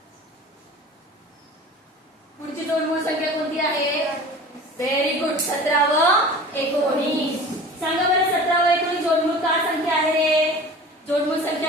पुढची जोडमूळ संख्या कोणती आहे? Very good. 17 व 19. सांगा बरं 17 व 19 जोडमूळ का संख्या आहे रे? जोडमूळ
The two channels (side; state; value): both; normal; correlation 0.40